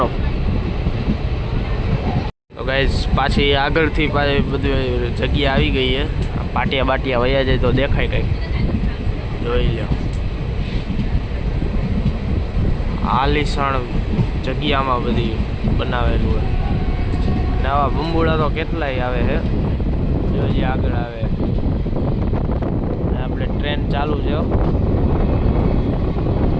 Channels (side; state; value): both; identical; correlation 1.00